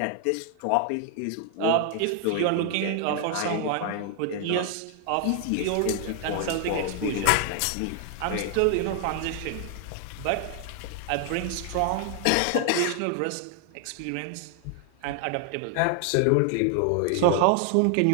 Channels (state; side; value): different; both; correlation 0.00